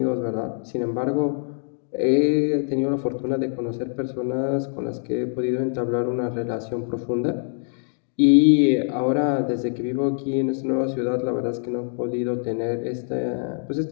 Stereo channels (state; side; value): silent; right; digital silence